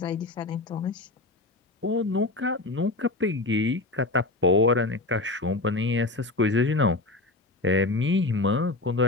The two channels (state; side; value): quieter; right; 3.1 dB